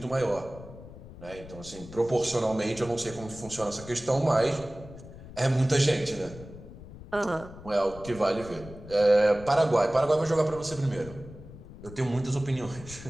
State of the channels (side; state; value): left; noise; rumble, 16 dB below the sound